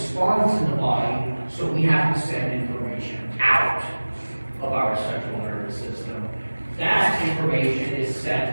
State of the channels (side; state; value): both; inverted; correlation -1.00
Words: in the body, so we have to send information out of our central nervous system. That information is